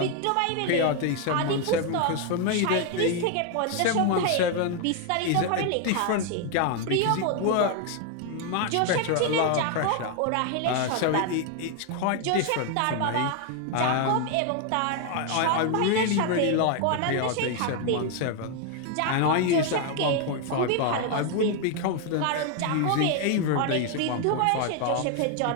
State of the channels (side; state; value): both; different; correlation 0.01